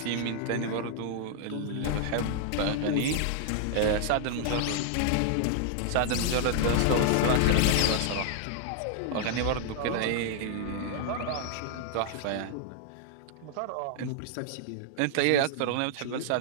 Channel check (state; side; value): different; both; correlation -0.01